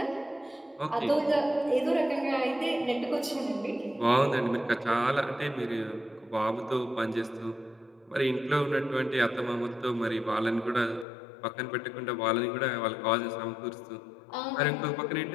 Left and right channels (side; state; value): right; drops out; at 11.1 s